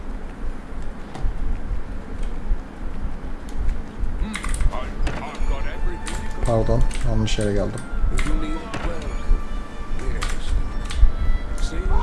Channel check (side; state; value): both; identical; correlation 1.00